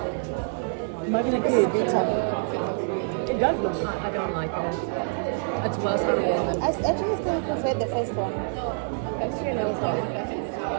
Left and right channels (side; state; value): left; silent; digital silence